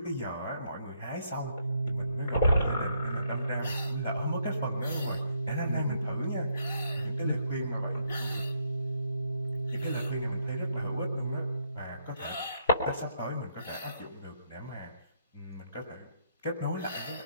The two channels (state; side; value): inverted; both; correlation -0.73